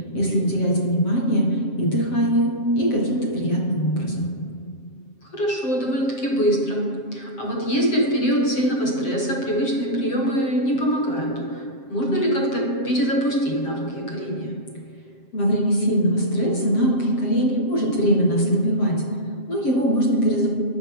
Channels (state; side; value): late; right; 7.6 ms